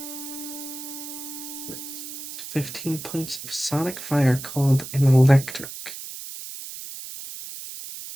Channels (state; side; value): noise; right; hiss, 10 dB below the sound